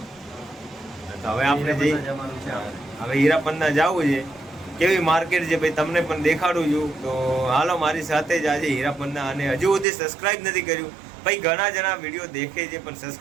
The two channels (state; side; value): drops out; left; at 9.9 s